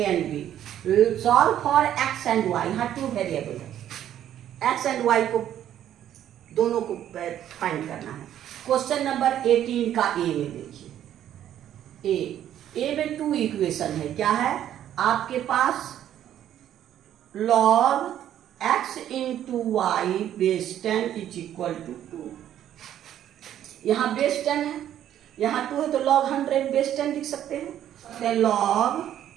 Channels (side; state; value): left; quieter; 11.1 dB